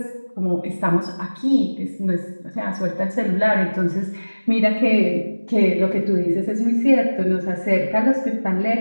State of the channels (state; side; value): inverted; both; correlation -1.00